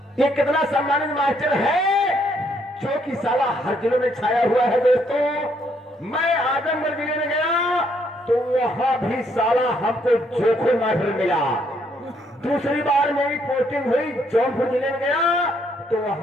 ये कितना सम्मानित मास्टर है जो कि साला हर जिलों में छाया हुआ है। दोस्तों मैं आजमगढ़ जिले में गया तो वहां भी साला हमको जोखू मास्टर मिला। दूसरी बार मेरी पोस्टिंग हुई जौनपुर जिले में गया तो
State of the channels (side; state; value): both; normal; correlation 0.71